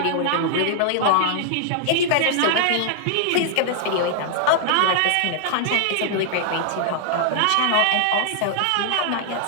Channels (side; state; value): both; different; correlation -0.01